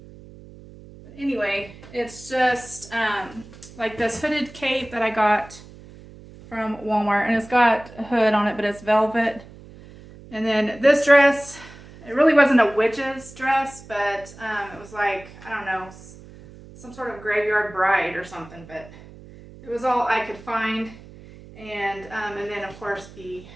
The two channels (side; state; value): right; noise; hum, 19 dB below the sound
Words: Anyway, it's just like this hooded cape that I got from Walmart, and it's got a hood on it, but it's velvet. And then this dress, it really wasn't a witch's dress, but it was like, I don't know, some sort of graveyard bride or something, but it was all I could find. And then of course the